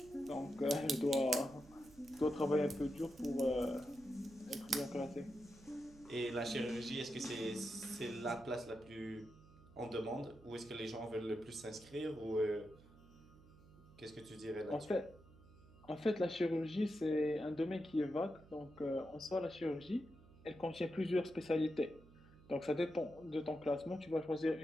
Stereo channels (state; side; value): noise; right; hum, 22 dB below the sound